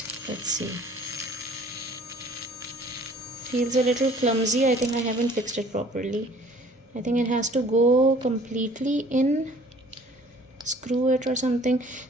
Let's see. Feels a little clumsy. I think I haven't fixed it properly. I think it has to go completely in, screw it or something.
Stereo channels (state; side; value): normal; both; correlation 0.53